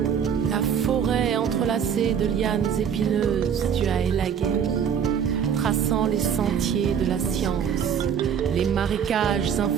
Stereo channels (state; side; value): quieter; left; 7.9 dB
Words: De lianes épineuses, tu as élagué, traçant les sentiers de la science, les marécages